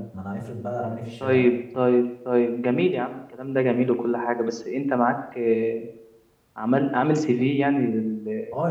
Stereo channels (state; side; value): identical; both; correlation 1.00